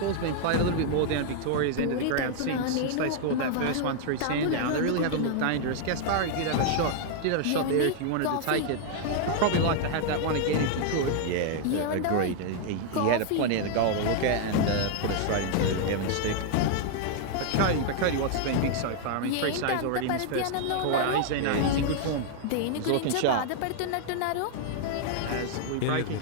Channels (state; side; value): different; both; correlation 0.00